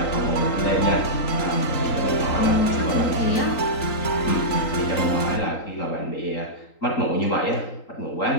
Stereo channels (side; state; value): right; late; 3.9 ms